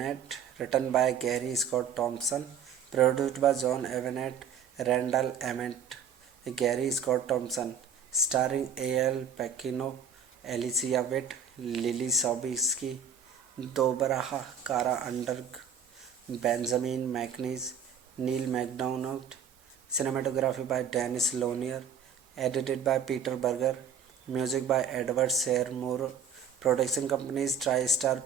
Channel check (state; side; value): quieter; left; 6.9 dB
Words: written by Gary Scott Thompson, produced by John Avnet, Randall Emmett, Gary Scott Thompson, starring A.L. Pacino, Alicia Witt, Lily Sobieski, Deborah Kara Underg, Benjamin McNeese, Neil MacDonald. Cinematography by Dennis Lonier, edited by Peter Berger, music by Edward Seymour. Production companies TriStar